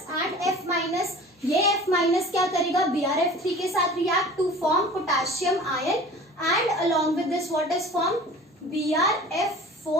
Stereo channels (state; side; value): normal; both; correlation 0.42